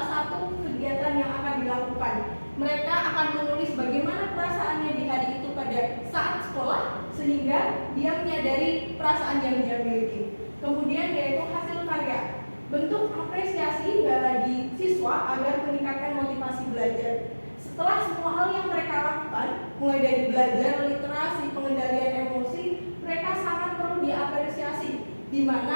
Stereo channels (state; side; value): inverted; both; correlation -1.00